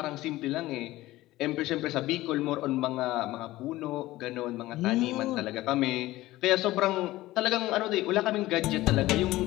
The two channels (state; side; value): quieter; right; 17.2 dB